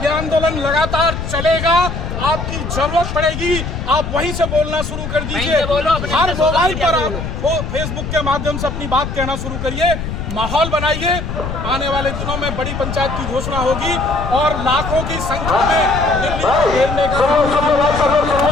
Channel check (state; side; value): noise; left; rumble, 5 dB below the sound